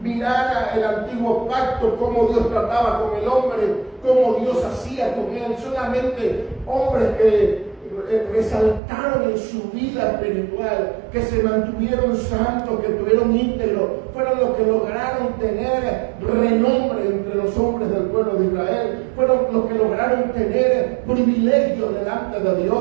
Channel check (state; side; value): drops out; left; at 8.8 s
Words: Mirar el antiguo pacto, cómo Dios trataba con el hombre, cómo Dios hacía con él. Solamente hombres que resaltaron en su vida espiritual, que se mantuvieron santos, que tuvieron íntegros, fueron los que lograron tener renombre entre los hombres del pueblo de Israel, fueron los que lograron tener privilegios delante de